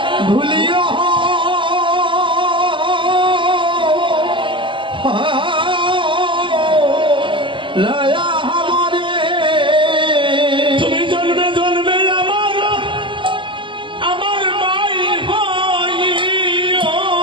ভুলিও লয়া हमारे তুমি জন্মে জন্মে আমার ভাই হইও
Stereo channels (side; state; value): left; late; 0.24 ms